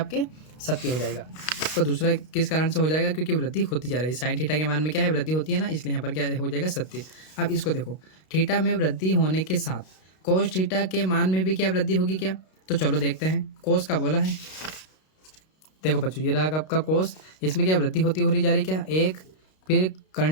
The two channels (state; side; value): late; right; 32 ms